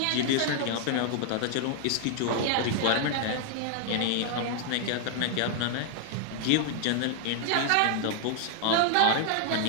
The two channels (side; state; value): both; different; correlation 0.00